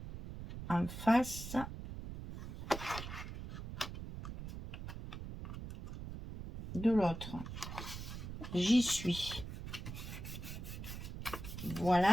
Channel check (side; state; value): right; noise; rumble, 8 dB below the sound